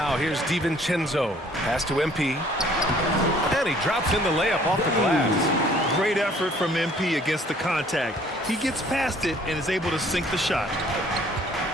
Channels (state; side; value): normal; both; correlation 0.57